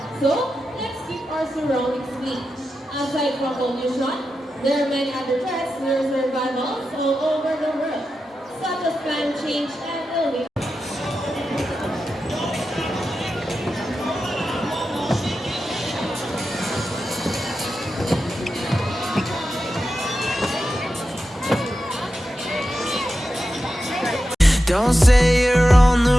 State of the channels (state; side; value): normal; both; correlation 0.90